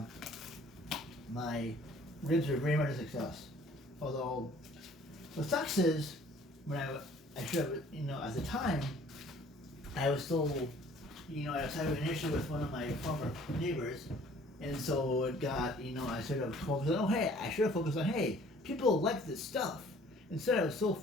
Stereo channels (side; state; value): both; normal; correlation 0.54